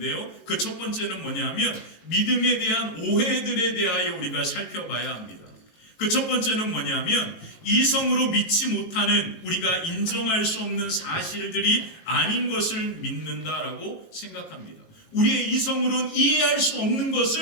그 첫 번째는 뭐냐면 믿음에 대한 오해들에 대하여 우리가 살펴봐야 합니다. 그 첫 번째는 뭐냐면 이성으로 믿지 못하는 우리가 인정할 수 없는 사실들이 아닌 것을 믿는다라고 생각합니다. 우리의 이성으로는 이해할 수 없는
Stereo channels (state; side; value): late; right; 18 ms